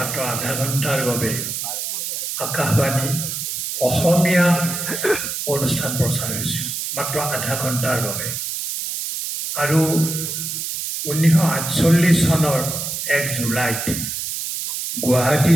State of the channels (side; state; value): right; noise; hiss, 4 dB below the sound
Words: আধা ঘণ্টাৰ বাবে আকাশবাণী অসমীয়া অনুষ্ঠান প্ৰচাৰ হৈছিল, মাত্ৰ আধা ঘণ্টাৰ বাবে। আৰু 1948 চনৰ 1 জুলাইত গুৱাহাটী